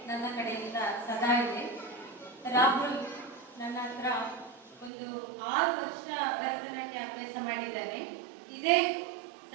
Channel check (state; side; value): drops out; left; at 4.9 s